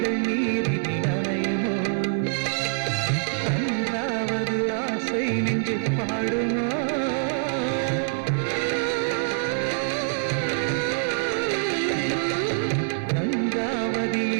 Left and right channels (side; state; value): left; silent; digital silence